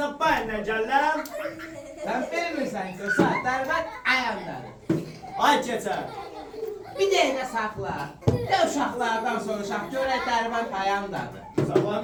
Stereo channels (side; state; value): both; identical; correlation 1.00